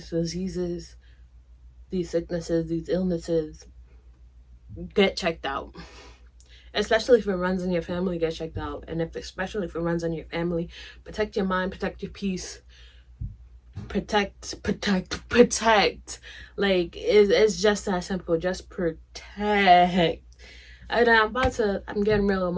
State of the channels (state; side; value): identical; both; correlation 1.00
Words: diseases, these sicknesses, these illnesses. Get checked out. Especially if it runs in your family, get checked out. And especially if it runs in your family, protect your mind, protect your peace. Protect. Like, it's just that simple. Just protect. And I'm getting real